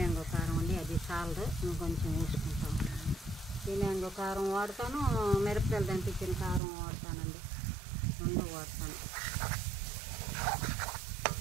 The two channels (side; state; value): left; drops out; at 6.6 s